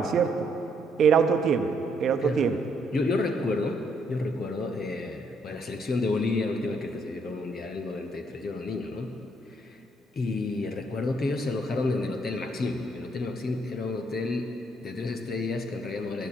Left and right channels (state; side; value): normal; both; correlation 0.71